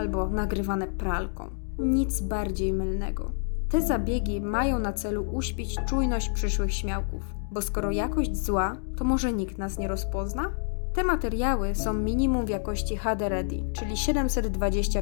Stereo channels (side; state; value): right; silent; digital silence